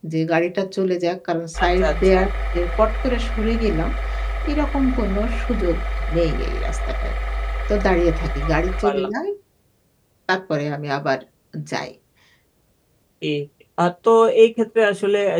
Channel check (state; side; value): identical; both; correlation 1.00